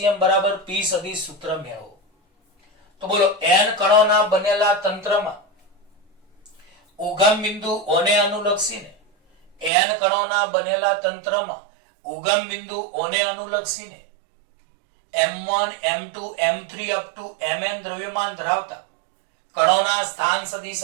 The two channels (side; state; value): left; drops out; at 9.7 s